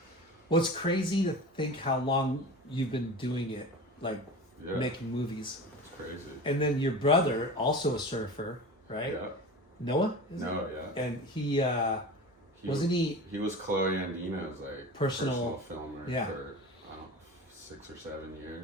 Well, it's crazy to think how long you've been doing it, like making movies. It's crazy. And then your brother, also a surfer, right? Yeah. Noah? No, yeah. And he wasn't he? He was Chloe Andino's like Personal filmer for I don't know, 6 or 7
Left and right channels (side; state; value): both; normal; correlation 0.33